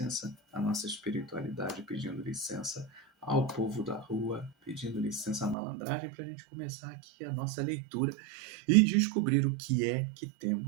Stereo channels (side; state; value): left; drops out; at 5.6 s